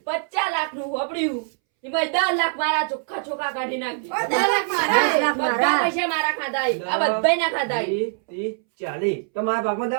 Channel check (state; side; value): silent; left; 63 dB below the other